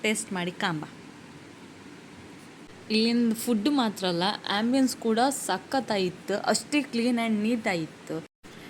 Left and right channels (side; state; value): both; identical; correlation 1.00